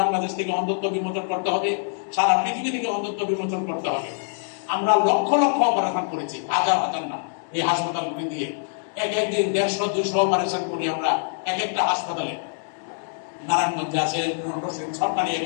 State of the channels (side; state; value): right; silent; digital silence